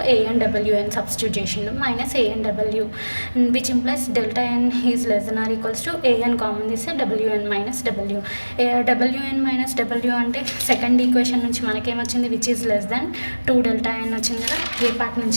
ఏఎన్ డబ్ల్యూఎన్ సబ్స్టిట్యూట్ చేసిండు, minus ANW which implies delta n is less than or equals to an common తీస్తే wn minus w. wn minus w అంటే సెకండ్ ఈక్వేషన్ నుంచి మనకేమొచ్చింది, which is less than 2 delta n వచ్చింది కదా. ఏ part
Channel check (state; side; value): inverted; both; correlation -1.00